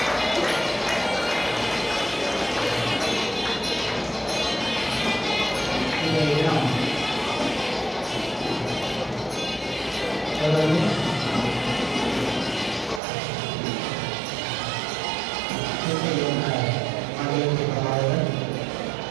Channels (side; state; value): left; drops out; at 13.0 s